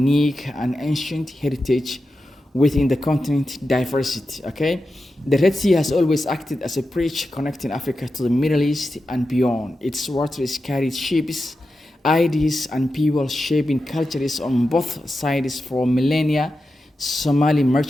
and ancient heritage within the continent's diversity. Okay, the Red Sea has always acted as a bridge connecting Africa to the Middle East and beyond. Its waters carried ships, ideas, and people, shaping cultures on both sides for millennia. Somali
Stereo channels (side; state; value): both; normal; correlation 0.91